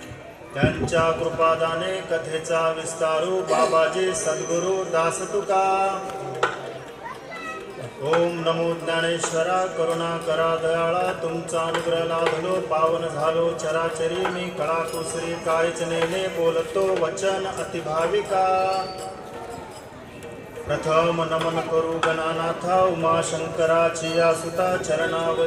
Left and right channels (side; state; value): both; identical; correlation 1.00